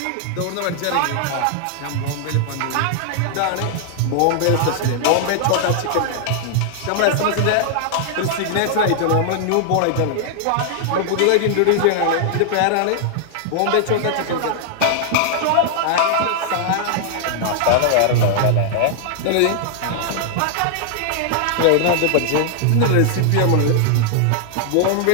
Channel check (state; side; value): different; both; correlation -0.01